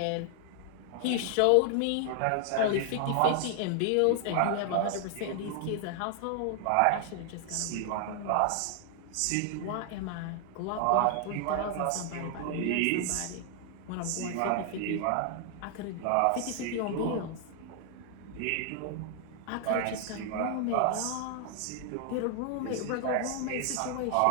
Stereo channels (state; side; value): different; both; correlation 0.00